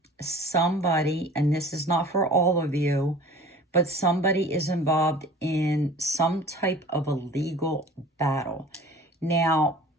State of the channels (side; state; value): both; normal; correlation 0.44